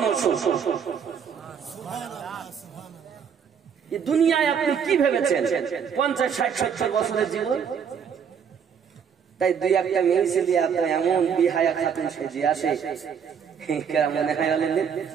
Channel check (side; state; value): left; quieter; 7.3 dB